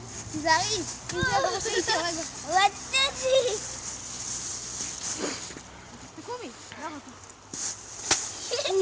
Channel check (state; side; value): identical; both; correlation 1.00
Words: תיזהרי. אם זה בראש איתי הרגע. רציתי. תקומי. לא רוצה.